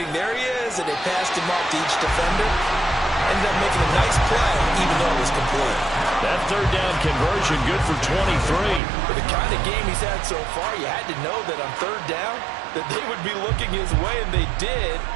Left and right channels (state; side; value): drops out; left; at 8.8 s